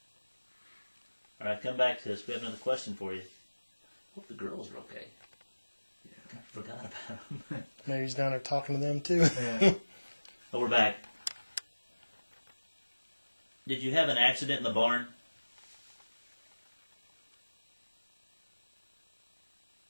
All right, come back to us. We have another question for you. Hope the girls are okay. Yeah, I forgot about them. Maybe he's down there talking to them too. Yeah. But we're back. Did you have an accident in the barn?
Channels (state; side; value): inverted; both; correlation -1.00